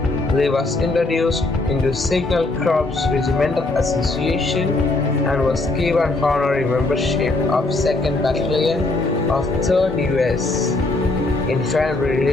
Lee was introduced into Signal Corps Regimental Association and was given honorary membership of 2nd Battalion of 3rd US Infantry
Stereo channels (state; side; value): quieter; right; 3.1 dB